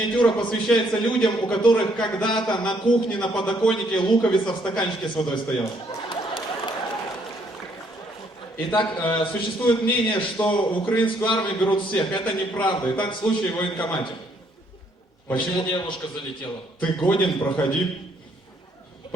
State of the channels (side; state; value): both; normal; correlation 0.68